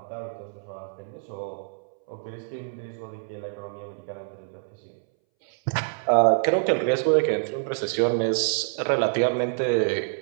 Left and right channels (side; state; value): left; silent; 61 dB below the other